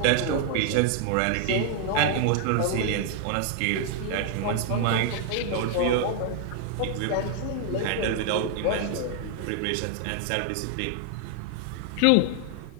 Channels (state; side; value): different; both; correlation 0.00